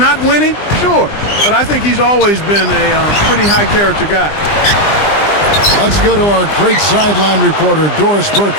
winning? Sure. But I think he's always been a pretty high-character guy. Let's go to our great sideline reporter, Doris Burke,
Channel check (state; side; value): late; right; 20 ms